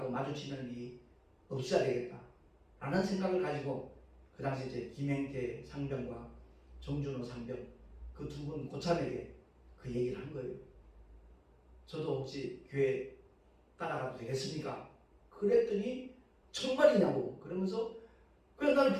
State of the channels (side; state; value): both; identical; correlation 1.00